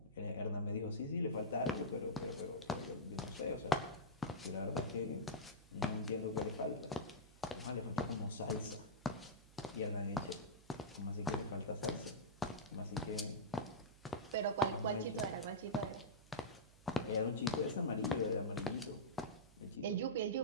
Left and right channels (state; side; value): noise; right; hum, 23 dB below the sound